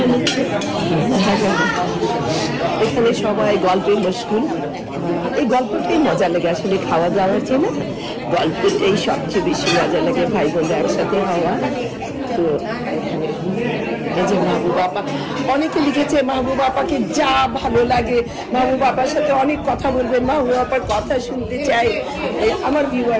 নিচ্ছে, এখানে সবাই গল্পে মশগুল। এই গল্পটাই মজা লাগে, আসলে খাওয়া দাওয়ার জন্য গল্পটাই সবচেয়ে বেশি মজা লাগে, ভাই বোনরা একসাথে হওয়া। তো এখানে এই যে মাহবুব আপা, অনেকে লিখেছে মাহবুব আপাকে যা ভালো লাগে, মাহবুব আপার সাথে অনেক কথা বলবেন, মাহবুব আপার কথা শুনতে চাই। আমার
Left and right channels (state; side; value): identical; both; correlation 1.00